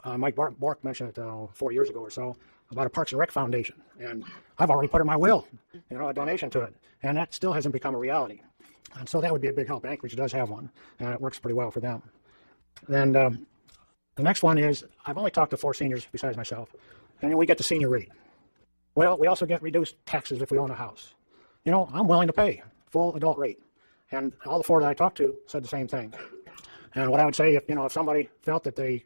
Mike Bork mentioned it 4 years ago or so about a Parks and Rec Foundation, and I've already put in my will, a donation to it, and that still hasn't become a reality. And so that would be a big help. Anchorage does have one, and it works pretty well for them. Then the next one is, I've only talked to 4 seniors besides myself, and then we get the senior rate. Well, we also get reduced taxes if we own a house. I'm willing to pay full adult rate, and all the 4 that I talked to said the same thing. And what I would say, if somebody felt that they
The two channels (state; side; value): inverted; both; correlation -1.00